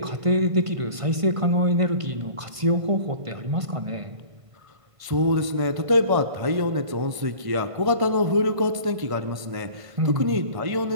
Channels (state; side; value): late; left; 1.5 ms